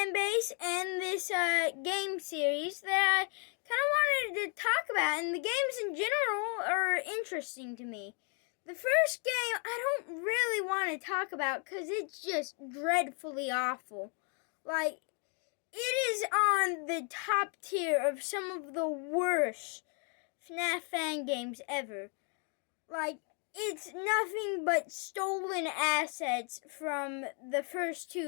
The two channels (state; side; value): quieter; right; 39.7 dB